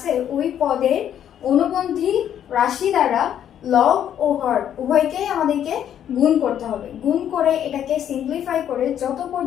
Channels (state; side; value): quieter; right; 9.9 dB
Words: ওই পদের অনুবন্ধী রাশি দ্বারা লব ও হর উভয়কেই আমাদেরকে গুণ করতে হবে। গুণ করে এটাকে সিম্পলিফাই করে, যত